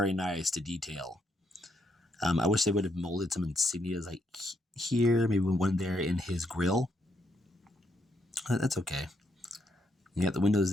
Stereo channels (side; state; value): both; normal; correlation 0.76